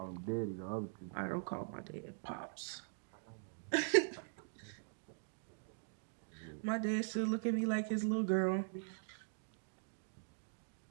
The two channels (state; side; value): silent; left; digital silence